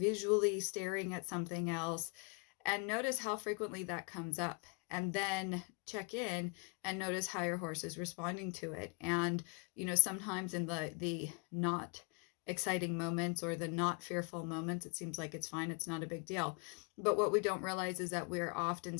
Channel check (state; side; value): quieter; right; 33.6 dB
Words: staring at something else? And notice how frequently that comes up. And then check in and notice how your horse is responding to it. And, sometimes in the not exciting moments or the not fearful moments, it seems like it's fine. It's not a big deal. But what we don't realize is that we're often